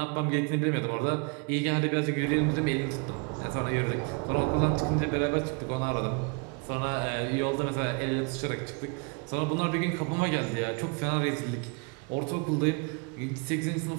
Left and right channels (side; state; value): left; quieter; 32.9 dB